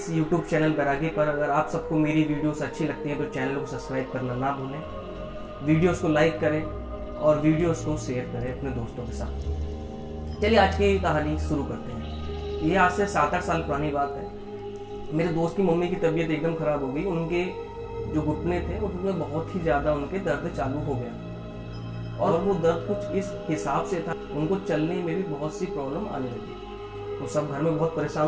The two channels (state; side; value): identical; both; correlation 1.00